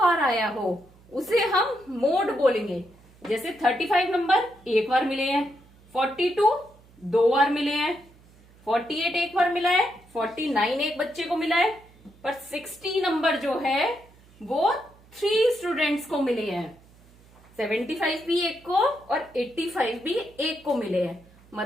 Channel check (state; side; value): noise; right; hum, 27 dB below the sound